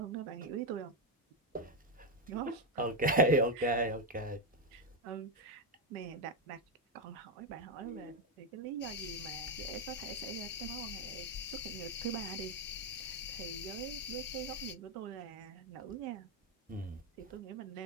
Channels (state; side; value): normal; both; correlation 0.05